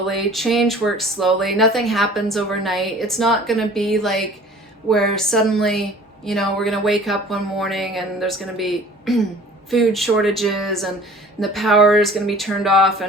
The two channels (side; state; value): both; normal; correlation 0.47